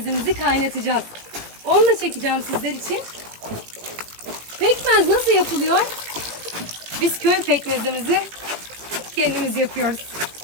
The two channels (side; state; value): left; late; 18 ms